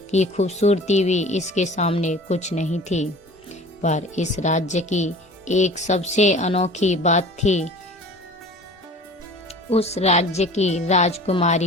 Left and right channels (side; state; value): both; normal; correlation 0.43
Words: की खूबसूरती भी इसके सामने कुछ नहीं थी। पर इस राज्य की एक सबसे अनोखी बात थी। उस राज्य की